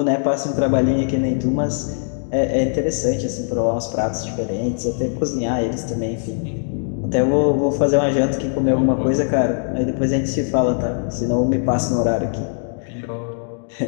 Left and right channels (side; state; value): right; silent; digital silence